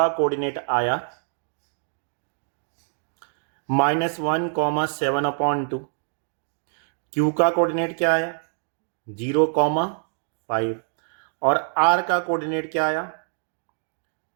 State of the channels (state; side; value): silent; left; digital silence